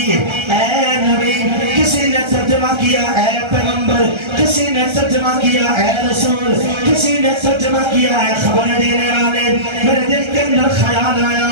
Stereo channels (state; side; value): late; left; 1.3 ms